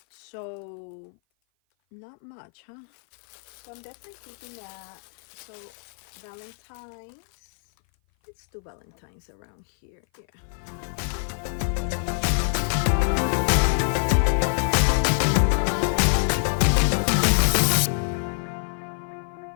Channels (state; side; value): silent; right; 57 dB below the other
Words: So not much, huh? So I'm definitely keeping that. So Valentine's, let's do Valentine's around here. Yeah.